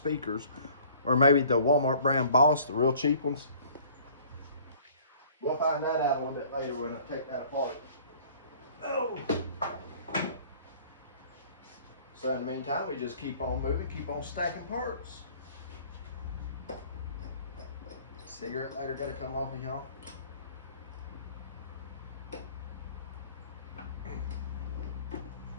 or maybe the Walmart brand Boss, the real cheap ones. We'll find that out a little bit later when I take that apart. Oh. So in the meantime, we just keep on moving, keep on stacking parts. Cigarette lighter gotta come off of y'all.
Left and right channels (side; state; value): both; inverted; correlation -0.52